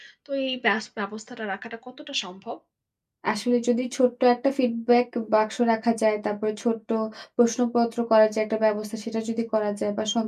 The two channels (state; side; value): identical; both; correlation 1.00